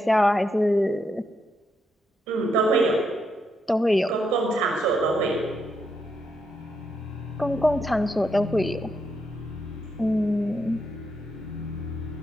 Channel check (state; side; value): normal; both; correlation 0.81